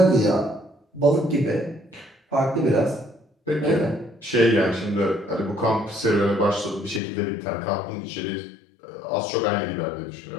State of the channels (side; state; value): right; drops out; at 7.0 s